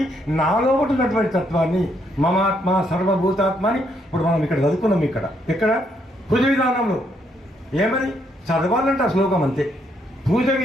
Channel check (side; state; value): both; normal; correlation 0.74